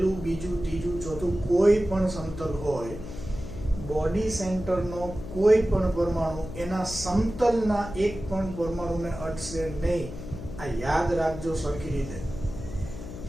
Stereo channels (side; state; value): left; noise; hum, 10 dB below the sound